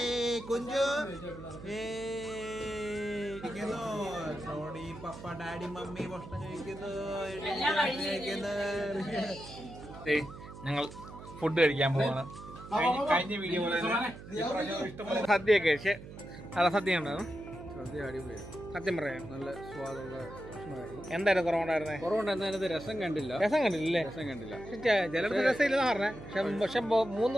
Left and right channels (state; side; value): noise; right; hum, 14 dB below the sound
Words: കുഞ്ചു, ടോണി, പപ്പ, ഡാഡി, മമ്മി ഭക്ഷണം കഴിക്കുന്നു. ഞങ്ങൾ ഫുഡ് കഴിക്കാൻ പോവാണ്. കഴിഞ്ഞ വീഡിയോ സദ്യയൊക്കെ കഴിച്ച് നല്ല സദ്യ ഉണ്ടായിരുന്നു. സദ്യ അടിപൊളിയാണ്. സത്യം പറയാം നല്ല സ്വാദുള്ള ഭക്ഷണമായിരുന്നു. എന്തായാലും കുറവുണ്ടായിരുന്നേ? കുറവുണ്ടായിരുന്നതിനകത്ത് രസം കണ്ടില്ല. രസം കണ്ടില്ലേ? രസം കണ്ടില്ല. ചിലർക്ക് രസമില്ലെന്ന് പറഞ്ഞേ. പക്ഷെ 3